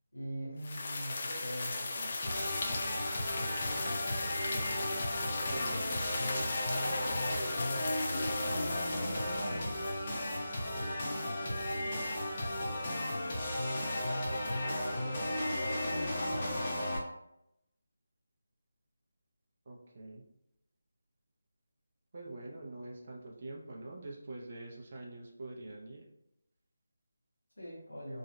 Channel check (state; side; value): inverted; both; correlation -0.91